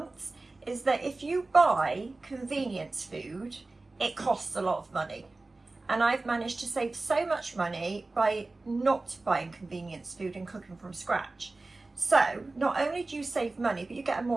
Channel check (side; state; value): left; quieter; 3.3 dB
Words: is that if you buy convenience food, it costs a lot of money. And I've managed to save so much money by not buying convenience food and cooking from scratch. So not only do you save money, but you get a